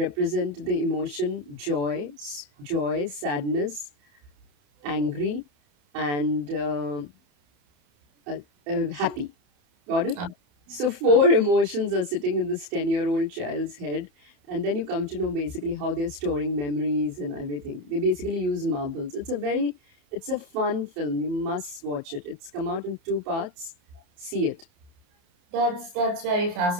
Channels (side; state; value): left; late; 30 ms